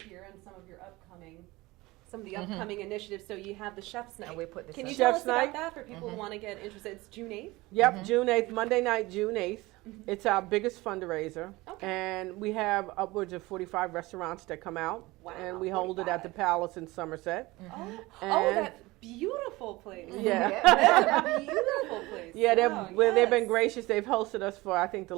here on some of your upcoming initiatives. So you have the Chef's Night. And we put this Can you up. tell Chef's us about Night? that for people who want to get interested? It's June 8th? Yep, June 8th, Monday night, June 8th. It's our biggest fundraiser. Okay. And we have upwards of 45 restaurants that come out. Wow, And we hold it at the 45. Palace in Somerset. Oh, And that beautiful place. Yeah. That's a beautiful place. Yeah, Wow, they've been yes. gracious. They've hosted us for, I think, the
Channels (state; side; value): quieter; left; 20.8 dB